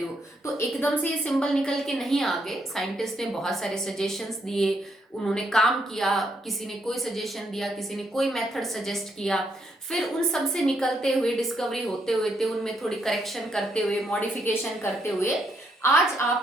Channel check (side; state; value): both; normal; correlation 0.75